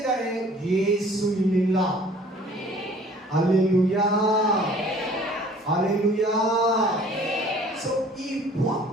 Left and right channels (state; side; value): normal; both; correlation 0.52